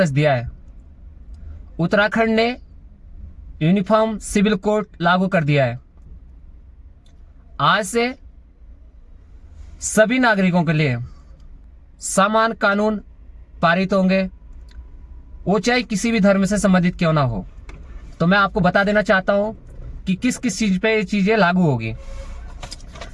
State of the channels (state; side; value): identical; both; correlation 1.00